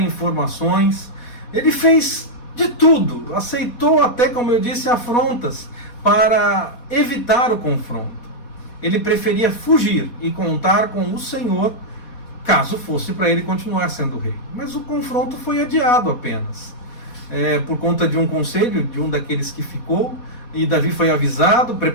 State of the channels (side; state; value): right; late; 4.2 ms